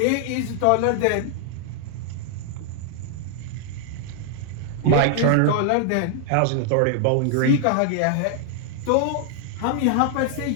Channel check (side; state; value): both; different; correlation 0.00